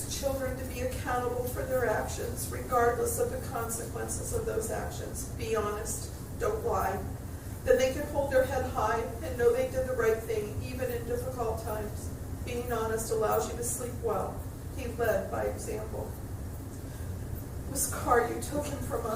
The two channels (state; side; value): identical; both; correlation 1.00